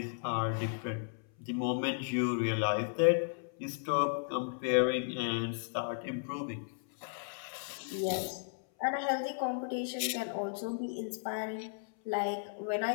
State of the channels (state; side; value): silent; right; 55 dB below the other